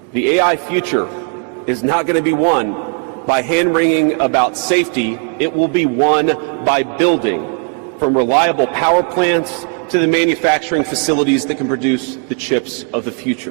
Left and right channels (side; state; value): left; quieter; 39.0 dB